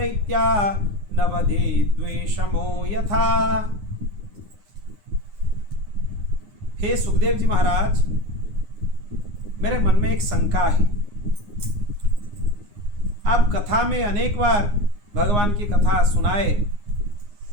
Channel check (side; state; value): left; late; 9.7 ms